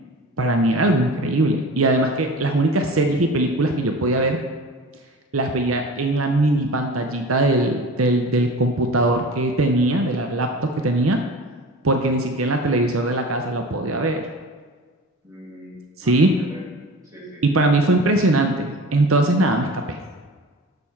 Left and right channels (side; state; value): both; normal; correlation 0.37